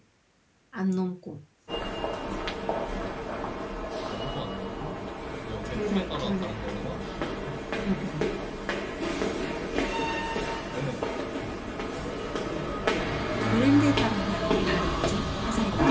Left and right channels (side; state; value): both; identical; correlation 1.00